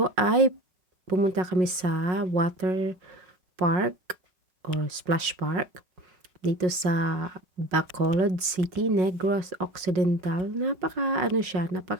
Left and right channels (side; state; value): left; late; 5.5 ms